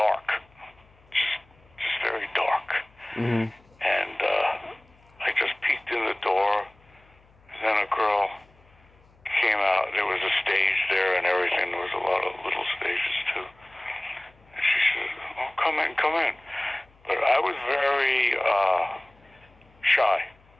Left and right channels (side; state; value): left; noise; hum, 30 dB below the sound